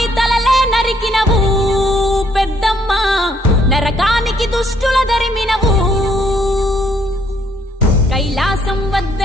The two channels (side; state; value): both; normal; correlation 0.68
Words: తలలే నరికినవు పెద్దమ్మ, నరకానికి దుష్టుల దరిమినవు. కైలాసం